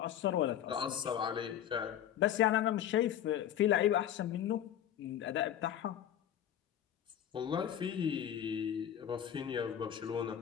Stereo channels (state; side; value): quieter; right; 10.3 dB